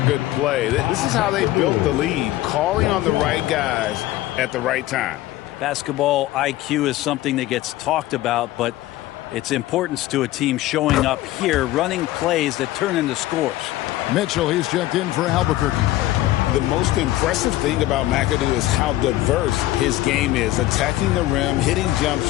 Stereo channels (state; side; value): quieter; right; 15.8 dB